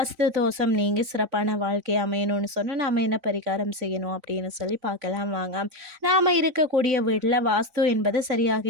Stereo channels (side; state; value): left; late; 3.9 ms